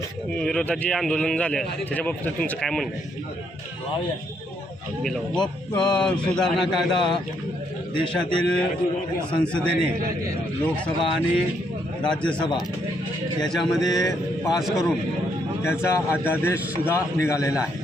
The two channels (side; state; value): both; normal; correlation 0.74